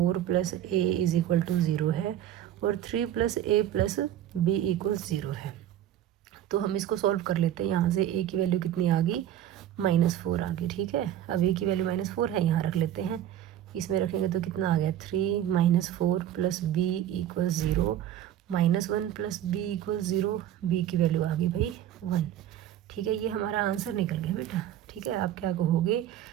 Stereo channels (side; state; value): left; quieter; 11.5 dB